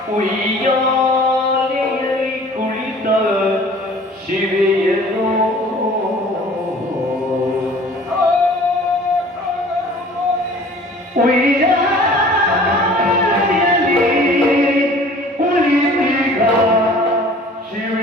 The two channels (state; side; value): normal; both; correlation 0.48